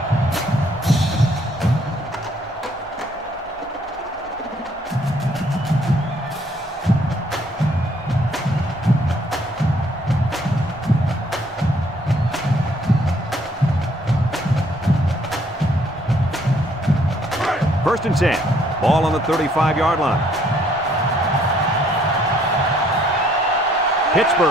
First and 10. Ball on the 35-yard line.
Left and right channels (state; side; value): normal; both; correlation 0.65